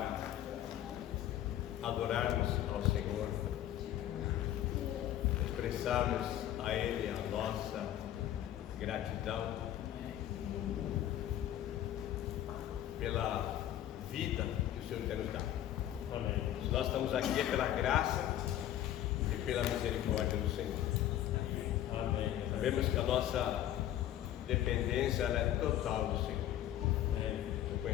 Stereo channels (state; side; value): quieter; right; 12.2 dB